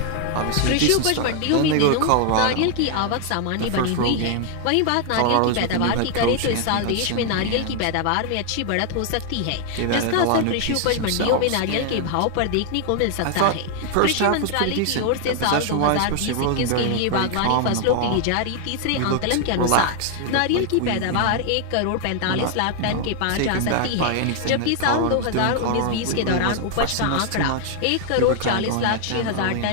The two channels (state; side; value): different; both; correlation 0.00